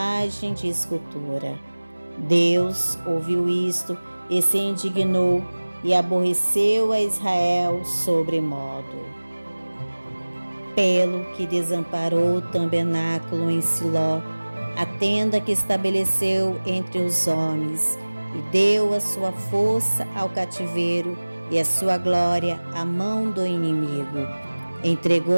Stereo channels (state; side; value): inverted; both; correlation -1.00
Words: de escultura. Deus ouviu isto e se indignou e aborreceu a Israel sobremodo. Pelo que desamparou o tabernáculo em Siló, a tenda que estabeleceu entre os homens, e deu a sua força ao cativeiro e a sua glória à mão do inimigo.